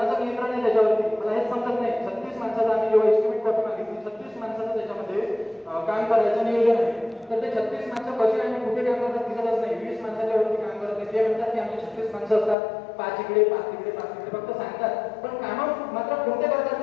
नियंत्रण आहे त्याच्यावरती मला हेच समजत नाही. 36 माणसाचं आम्ही जेव्हा एस्टिमेट कॉपी मागितली, 36 माणसाचं त्याच्यामध्ये काम करायचं नियोजन आहे. तर ते 36 माणसं कशी आणि कुठे काम करतात दिसतच नाही. 20 माणसाच्या वरती काम करत नाही. ते म्हणतात की आमचे 36 माणसं असतात, 5 इकडे 5 तिकडे 5 तिकडे फक्त सांगतात, पण कामं मात्र कोणते करतात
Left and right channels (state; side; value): drops out; right; at 12.6 s